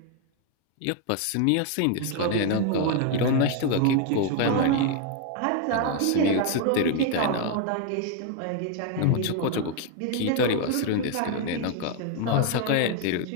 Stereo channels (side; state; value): both; different; correlation 0.01